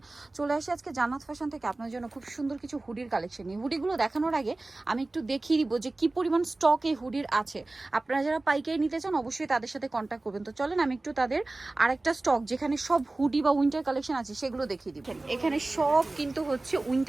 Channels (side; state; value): left; quieter; 3.0 dB